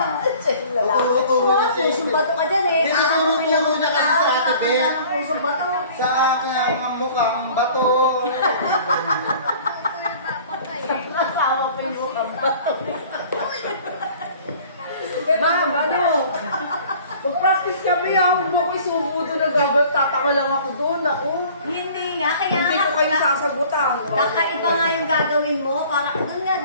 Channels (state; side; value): inverted; both; correlation -0.49